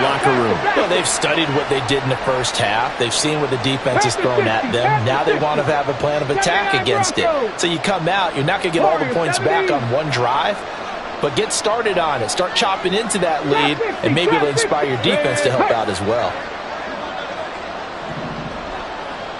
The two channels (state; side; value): identical; both; correlation 1.00